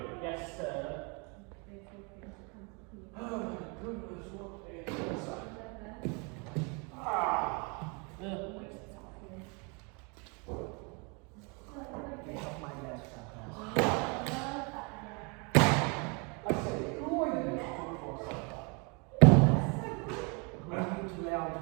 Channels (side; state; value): left; quieter; 32.4 dB